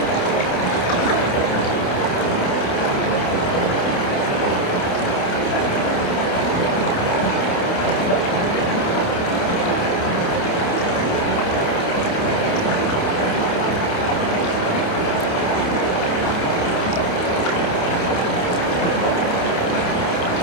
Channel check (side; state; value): right; late; 28 ms